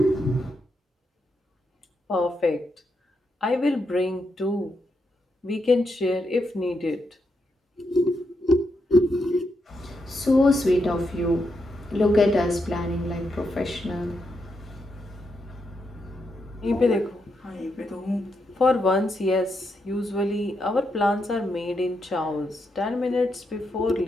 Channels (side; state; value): both; normal; correlation 0.82